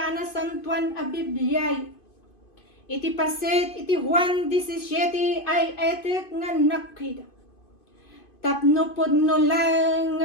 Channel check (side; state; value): right; late; 2.5 ms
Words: anasantuan a Bibliay. Iti paset iti Juan 17 ay etek nga nakida. Tapno podno lang